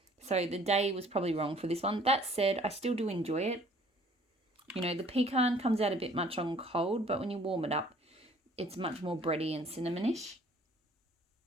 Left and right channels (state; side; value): normal; both; correlation 0.56